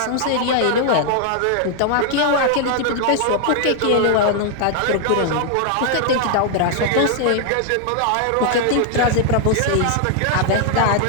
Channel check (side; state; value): both; different; correlation 0.00